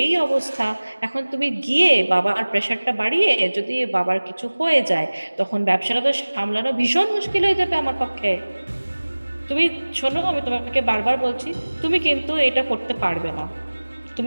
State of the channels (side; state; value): both; inverted; correlation -1.00